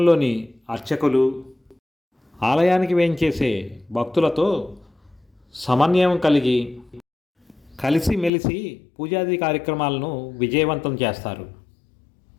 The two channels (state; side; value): drops out; right; at 8.3 s